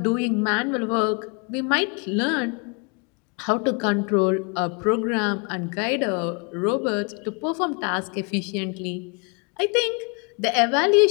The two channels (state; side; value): quieter; right; 33.2 dB